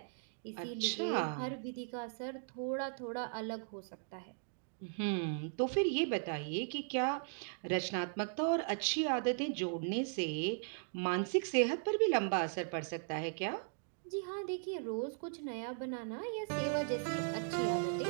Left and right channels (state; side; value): silent; left; digital silence